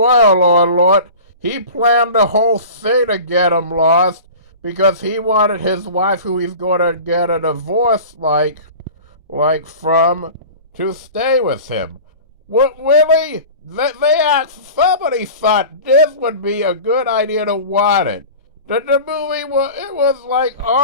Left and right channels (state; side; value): inverted; both; correlation -0.37